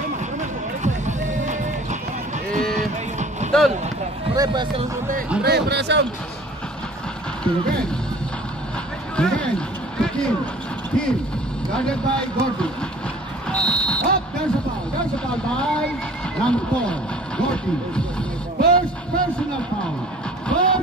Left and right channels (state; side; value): normal; both; correlation 0.49